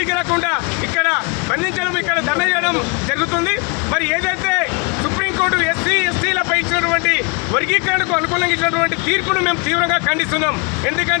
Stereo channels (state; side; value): quieter; right; 31.8 dB